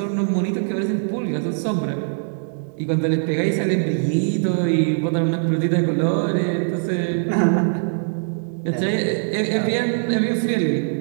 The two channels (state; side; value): silent; left; digital silence